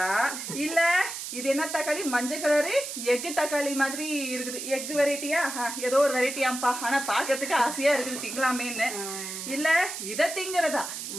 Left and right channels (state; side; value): noise; right; hiss, 7 dB below the sound